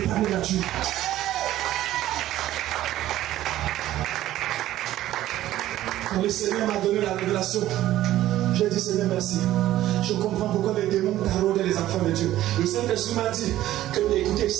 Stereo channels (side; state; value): left; quieter; 14.0 dB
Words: nature. Quand le Seigneur m'a donné la révélation, j'ai dit Seigneur merci. Je comprends pourquoi les démons taraudaient les enfants de Dieu. Le Saint-Esprit m'a dit que, écoutez,